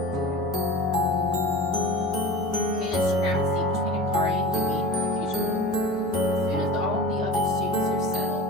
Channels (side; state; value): both; normal; correlation 0.34